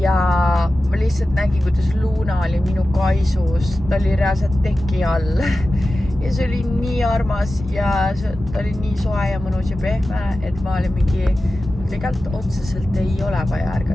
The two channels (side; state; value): both; normal; correlation 0.94